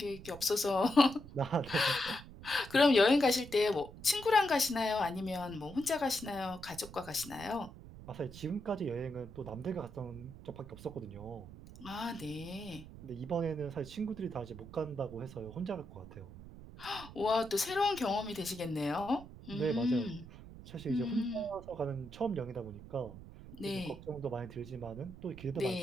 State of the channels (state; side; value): noise; right; rumble, 15 dB below the sound